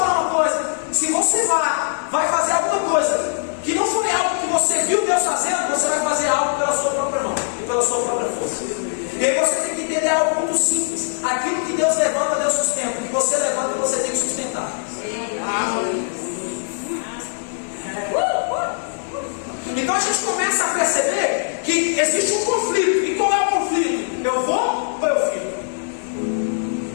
uma coisa: se você vai fazer alguma coisa que não foi algo que você viu Deus fazendo, você vai fazer algo pela sua própria mão e pela sua própria força. E aí você tem que entender algo muito simples: aquilo que Deus levanta, Deus sustenta. O que você levanta, você tem que sustentar. Então a gente começa a perceber que existe um conflito. E qual é o conflito? Eu vou ou eu fico?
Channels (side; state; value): right; silent; digital silence